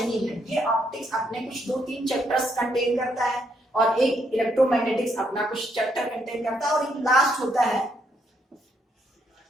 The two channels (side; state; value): both; normal; correlation 0.74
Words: है। ये ऑप्टिक्स अपने कुछ 2-3 चैप्टर्स कंटेन करता है और एक इलेक्ट्रोमैग्नेटिक्स अपना कुछ चैप्टर कंटेन करता है, और एक लास्ट होता है